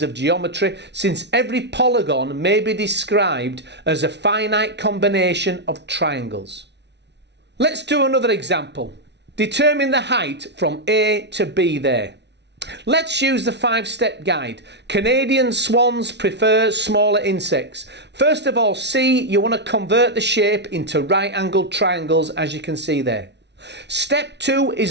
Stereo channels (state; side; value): late; left; 0.50 ms